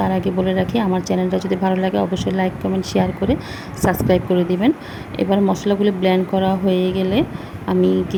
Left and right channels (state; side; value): identical; both; correlation 1.00